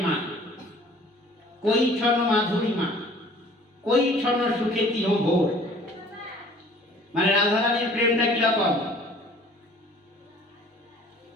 কই ছন মাধুরীমা, কই ছন সুখে তিহ ভোর। মানে রাধারানীর প্রেমটা কিরকম,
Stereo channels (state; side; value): normal; both; correlation 0.52